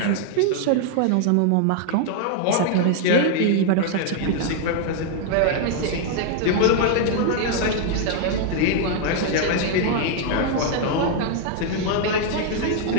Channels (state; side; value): different; both; correlation 0.00